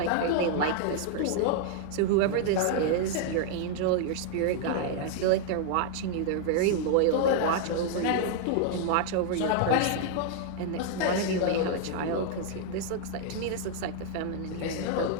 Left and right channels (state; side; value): different; both; correlation 0.00